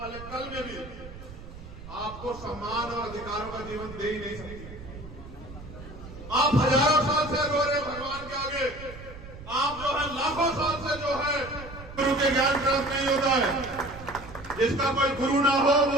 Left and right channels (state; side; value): noise; right; rumble, 15 dB below the sound